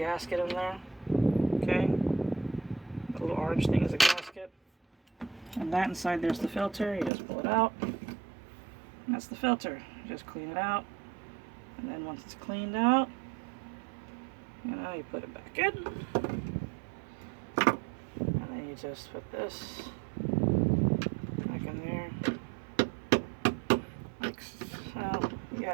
in there. Okay, the little orange thing is a gasket. And that inside there's the filter. You just pull it out. And that's the filter. You just clean it out. And then once it's cleaned out, you know, you put it back in. And then you just put this back in there. Like so. You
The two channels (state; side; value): drops out; left; at 7.1 s